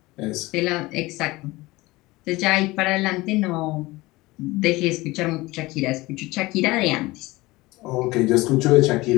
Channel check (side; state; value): right; quieter; 20.7 dB